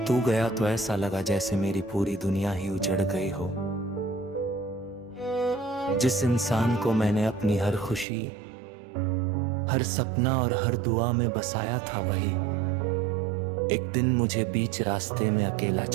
तू गया तो ऐसा लगा जैसे मेरी पूरी दुनिया ही उजड़ गई हो। जिस इंसान को मैंने अपनी हर खुशी, हर सपना और हर दुआ में बसाया था, वही एक दिन मुझे बीच रास्ते में अकेला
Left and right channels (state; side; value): drops out; left; at 8.1 s